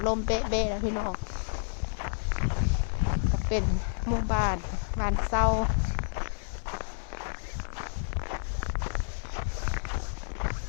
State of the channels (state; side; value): silent; right; 58 dB below the other